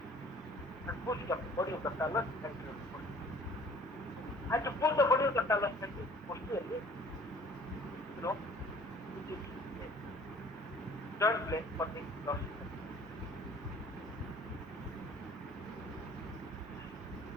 and push the body of the talus and your body. And to pull the body of the talus and posteriorly, which is joint plane for the dorsal.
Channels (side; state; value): both; normal; correlation 0.52